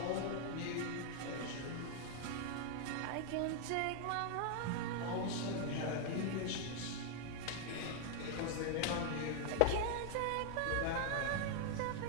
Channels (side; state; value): both; different; correlation 0.00